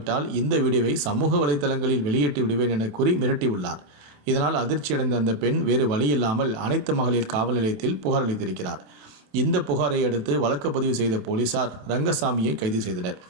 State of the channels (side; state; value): left; late; 27 ms